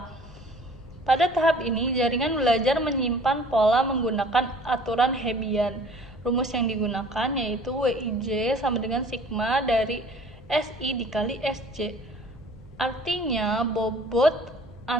Pada tahap ini, jaringan belajar menyimpan pola menggunakan aturan Hebbian. Rumus yang digunakan yaitu WIJ sama dengan sigma dari SI dikali SJ. Artinya, bobot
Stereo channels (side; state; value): left; noise; rumble, 21 dB below the sound